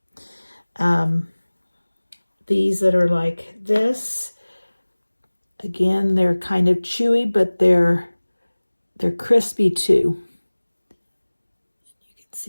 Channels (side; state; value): both; inverted; correlation -1.00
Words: These that are like this, again, they're kind of chewy, but they're crispy too. You can